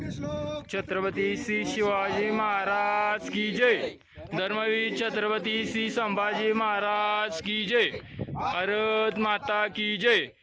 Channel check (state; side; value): identical; both; correlation 1.00